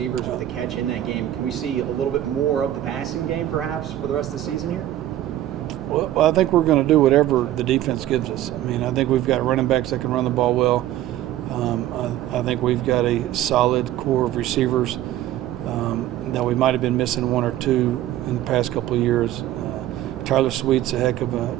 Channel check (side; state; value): left; quieter; 13.3 dB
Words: with a catch in that game. Can we see a little bit more of the passing game, perhaps, for the rest of the season here? Well, I think we're going to do whatever the defense gives us. I mean, I think we've got running backs that can run the ball well. I think we've got a solid core of receivers that we might have been missing 1 or 2 in the past couple of years. Tyler Sweet's a heck of